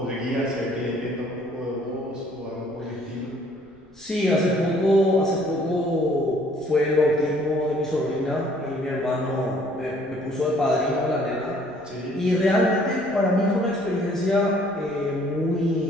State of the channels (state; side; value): noise; left; rumble, 29 dB below the sound